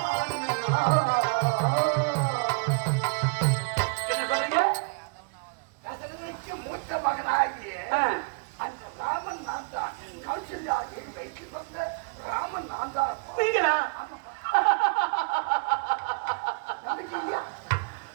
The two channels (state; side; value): quieter; left; 36.1 dB